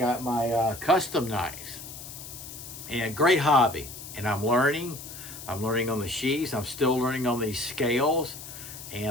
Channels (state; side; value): noise; left; hiss, 12 dB below the sound